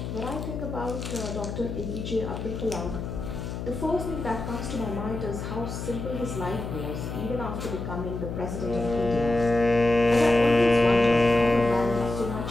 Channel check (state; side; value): noise; left; hum, 6 dB below the sound